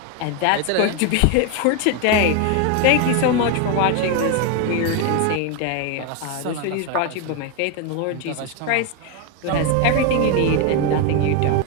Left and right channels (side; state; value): both; different; correlation 0.02